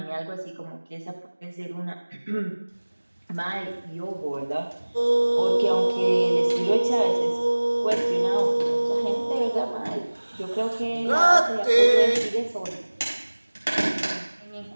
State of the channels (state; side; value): inverted; both; correlation -1.00